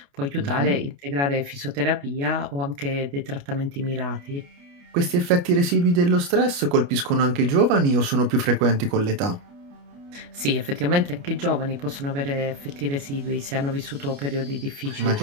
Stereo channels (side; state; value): left; late; 29 ms